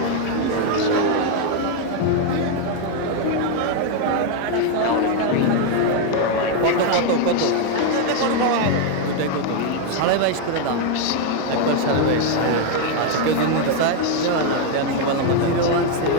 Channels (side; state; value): both; different; correlation 0.01